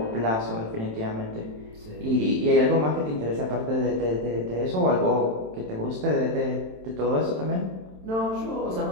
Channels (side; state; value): left; late; 27 ms